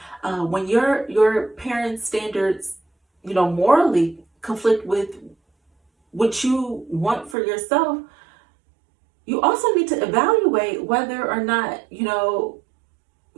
When your parents' standards, morally conflict with what you want for yourself, you also need to evaluate whether or not,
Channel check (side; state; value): left; drops out; at 7.4 s